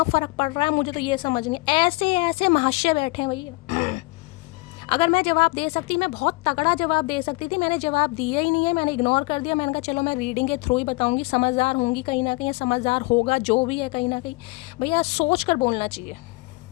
फ़र्क पड़ रहा है, मुझे तो ये समझ नहीं। ऐसे ऐसे महाशय बैठे हैं भैया अगर मैं जवाब दे सकती, मैं बहुत तगड़ा जवाब दे सकती थी, मैंने जवाब दिया ही नहीं है, मैंने इग्नोर कर दिया। मैंने कहा चलो मैं रीडिंग के थ्रू ही बताऊंगी, समझदार होंगी कहीं ना कहीं, समझदार होगा जो भी है कहीं ना कहीं। भैया सोच कर बोलना चाहिए।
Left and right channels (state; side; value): quieter; right; 24.5 dB